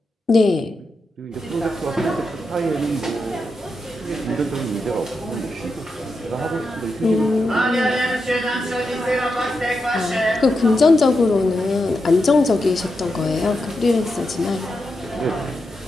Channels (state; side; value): normal; both; correlation 0.86